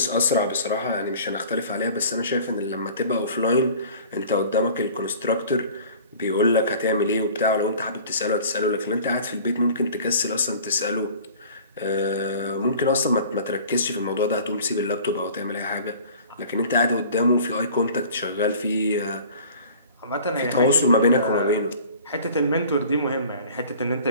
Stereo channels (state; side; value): inverted; both; correlation -0.46